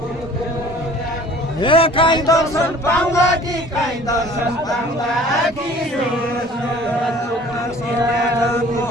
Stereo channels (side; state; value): both; normal; correlation 0.49